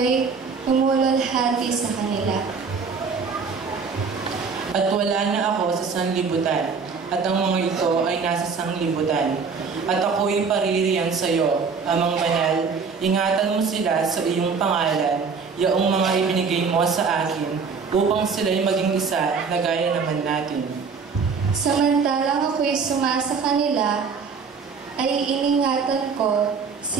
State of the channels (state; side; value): quieter; left; 5.3 dB